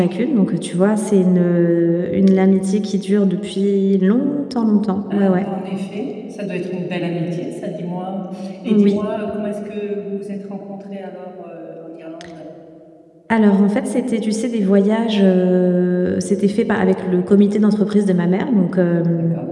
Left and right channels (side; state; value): both; identical; correlation 1.00